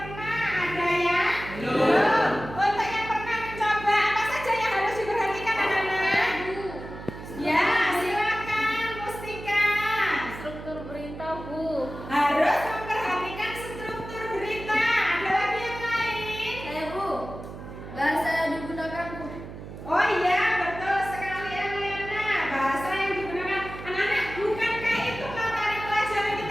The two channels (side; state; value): right; noise; hum, 12 dB below the sound